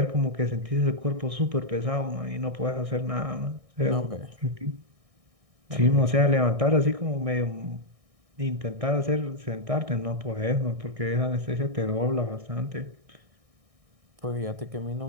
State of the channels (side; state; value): left; late; 1.6 ms